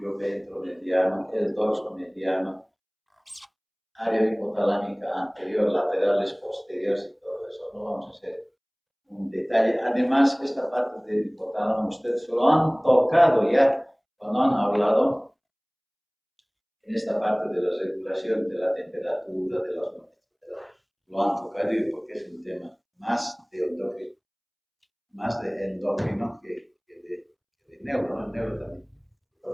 ventromediano, el dorsomediano, área hipotalámica anterior, laterales, posteriores y todo eso. No vamos a hacer un detalle. Además, esta parte del hipotálamo ustedes lo han tocado ya cuando han hablado en esta parte de la regulación de la temperatura, de las notas. Lo han tocado porque es un tema más de endocrino que de neuro, ¿no? El neuro también.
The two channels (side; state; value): both; identical; correlation 1.00